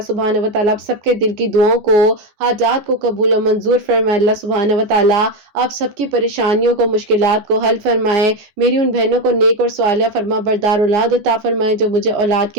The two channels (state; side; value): late; left; 14 ms